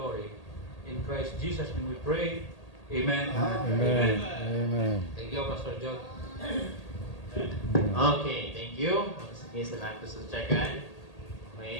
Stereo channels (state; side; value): late; right; 1.8 ms